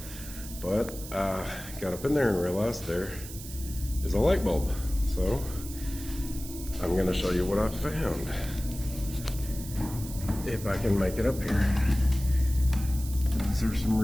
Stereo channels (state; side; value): noise; right; hiss, 13 dB below the sound